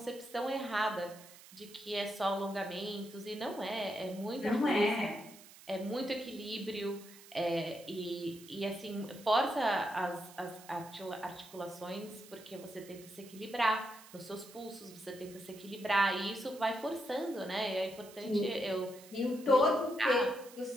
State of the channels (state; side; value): noise; right; hiss, 19 dB below the sound